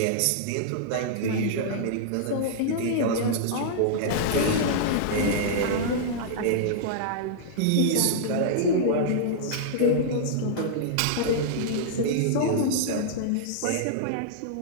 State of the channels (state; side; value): different; both; correlation -0.02